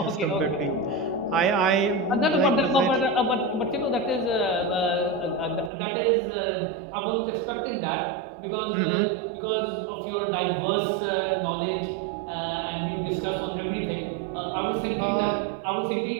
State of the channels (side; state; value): left; drops out; at 5.7 s